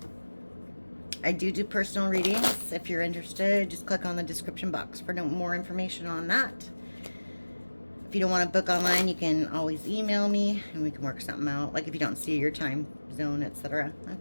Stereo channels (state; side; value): inverted; both; correlation -1.00